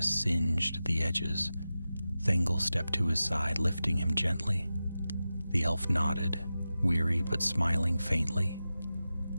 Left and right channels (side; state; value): both; inverted; correlation -0.94